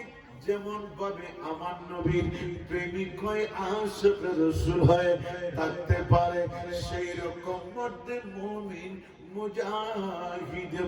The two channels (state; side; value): identical; both; correlation 1.00